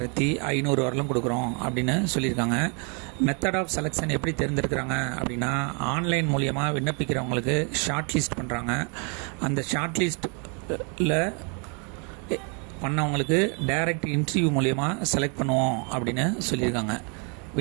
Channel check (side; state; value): left; quieter; 36.8 dB